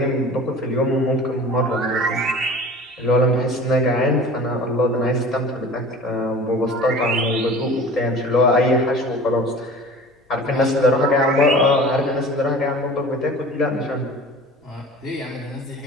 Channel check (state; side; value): normal; both; correlation 0.41